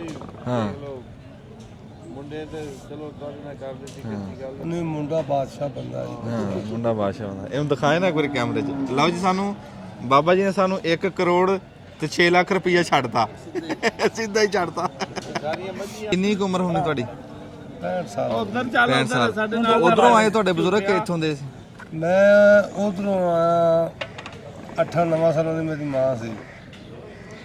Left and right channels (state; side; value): identical; both; correlation 1.00